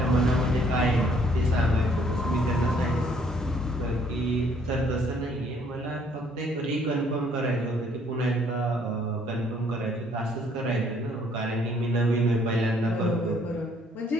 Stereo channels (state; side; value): normal; both; correlation 0.63